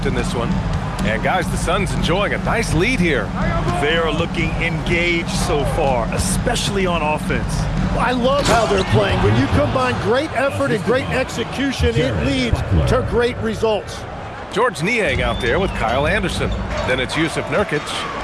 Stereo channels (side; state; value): both; identical; correlation 1.00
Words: in this one. And guys, the Suns enjoying a nice lead here. They are looking engaged so far, especially on offense. I love how they're playing. When you combine great effort and great execution, it leads to great results. George Niang out there with Kyle Anderson. Then it's Yusuf Nurkic,